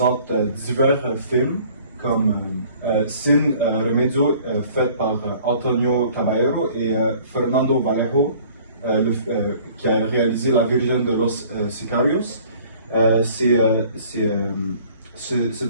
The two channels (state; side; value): inverted; both; correlation -0.53